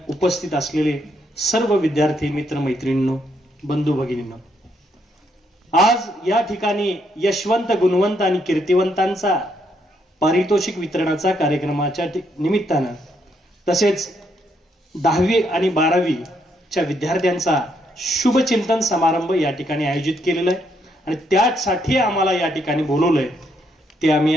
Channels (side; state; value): both; normal; correlation 0.75